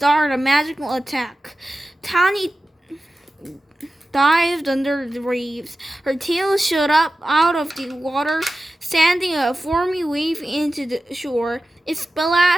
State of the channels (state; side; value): normal; both; correlation 0.94